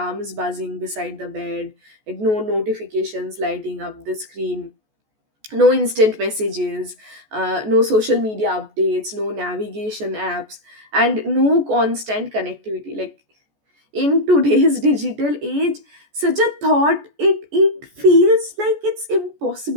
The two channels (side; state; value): left; late; 14 ms